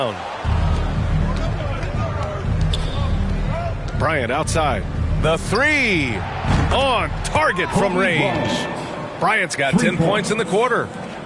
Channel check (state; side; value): identical; both; correlation 1.00